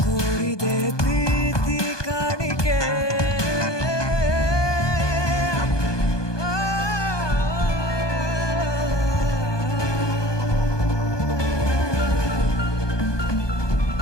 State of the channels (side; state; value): right; late; 1.2 ms